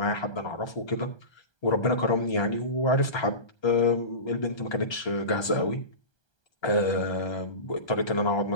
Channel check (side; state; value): right; late; 1.3 ms